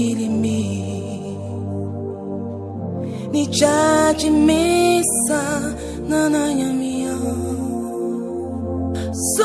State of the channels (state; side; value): identical; both; correlation 1.00